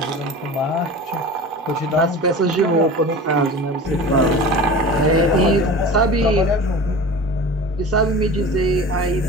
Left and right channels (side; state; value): both; normal; correlation 0.35